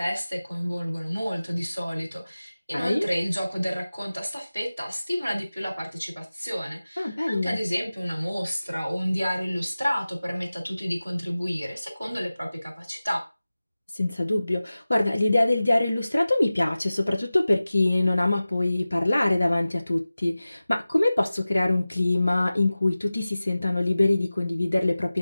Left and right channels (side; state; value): both; inverted; correlation -0.97